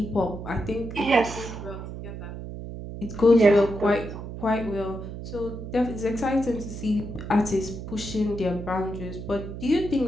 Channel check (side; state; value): right; noise; hum, 9 dB below the sound